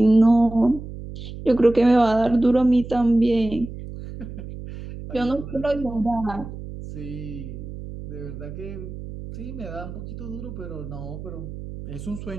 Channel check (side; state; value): right; noise; hum, 11 dB below the sound